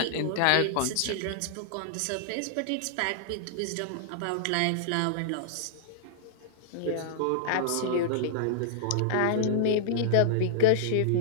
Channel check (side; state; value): both; different; correlation -0.02